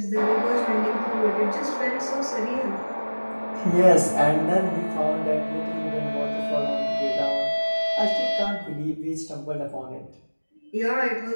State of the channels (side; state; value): both; inverted; correlation -1.00